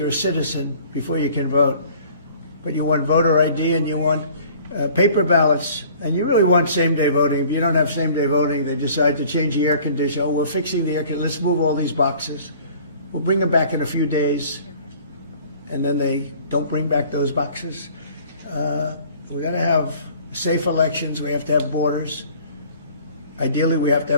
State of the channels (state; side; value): inverted; both; correlation -0.51